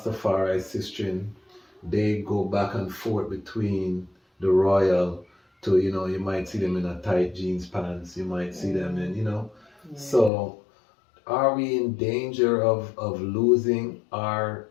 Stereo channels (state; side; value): drops out; right; at 10.3 s